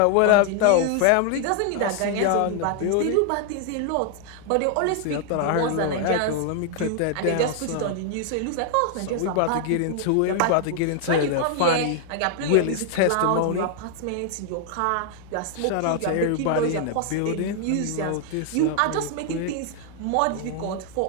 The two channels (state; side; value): different; both; correlation 0.00